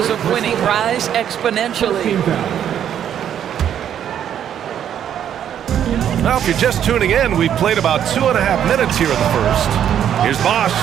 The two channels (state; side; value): quieter; left; 9.7 dB